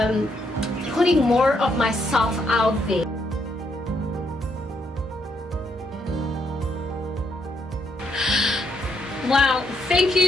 putting more of myself out there. Wow, thank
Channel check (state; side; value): normal; both; correlation 0.75